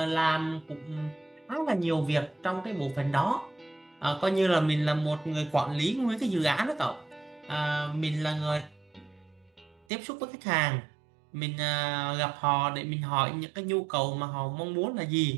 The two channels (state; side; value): drops out; left; at 9.9 s